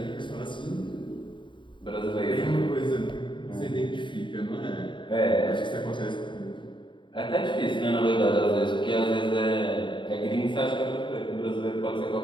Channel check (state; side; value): late; right; 0.23 ms